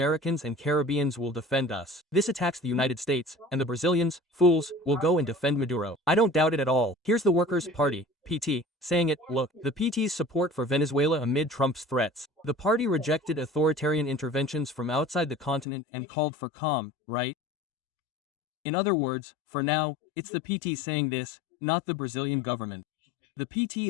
and Caribbeans will defend us. This attacks the United States, and the Brazilians, fools, will go and defend Maduro. I don't doubt it at all. Here's the Workers' Party, PT, saying it, look, the PT's support for Venezuela amid Trump's threats. The party rejected authoritarian interventions from outside the continent and called for calm, right? In other words, for now, it's the PT saying this, not the Brazilian government. The PT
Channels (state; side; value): drops out; right; at 15.7 s